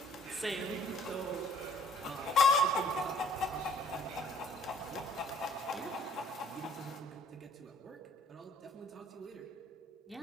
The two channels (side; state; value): both; normal; correlation 0.59